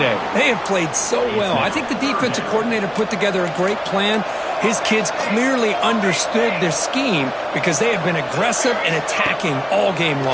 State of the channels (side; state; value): both; identical; correlation 1.00